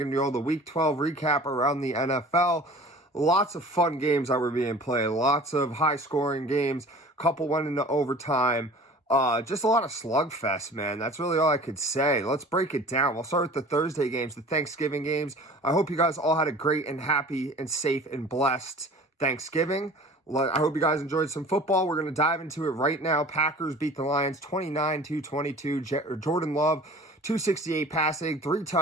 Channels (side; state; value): both; normal; correlation 0.44